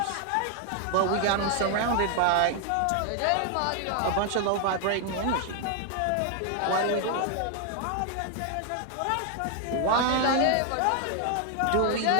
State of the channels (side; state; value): both; different; correlation 0.00